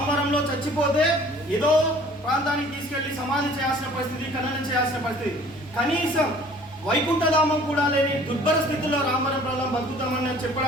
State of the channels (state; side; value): normal; both; correlation 0.51